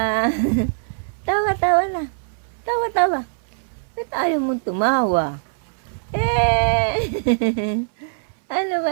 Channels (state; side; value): silent; left; 61 dB below the other